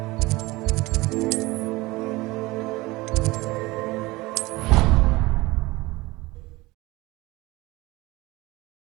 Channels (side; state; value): left; quieter; 21.1 dB